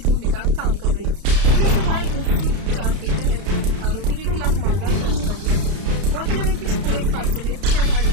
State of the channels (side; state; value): left; late; 32 ms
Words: का काम कर रही थी। पुलिस ने धारा 304 के तहत आरोपी के खिलाफ मामला दर्ज कर लिया है। गौरतलब है कि इस पूरे हादसे में 6 घायलों